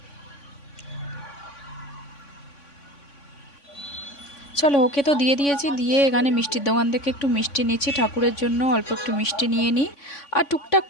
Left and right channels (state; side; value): late; right; 3.5 ms